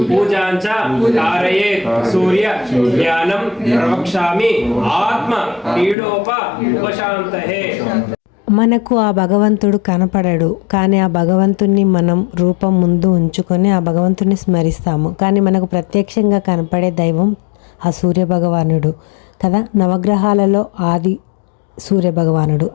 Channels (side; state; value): right; drops out; at 6.0 s